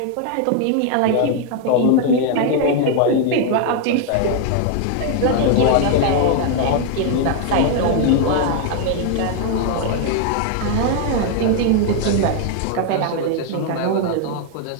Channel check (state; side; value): different; both; correlation 0.00